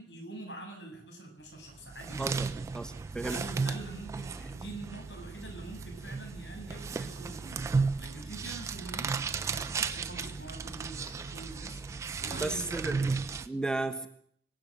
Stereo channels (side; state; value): left; quieter; 3.8 dB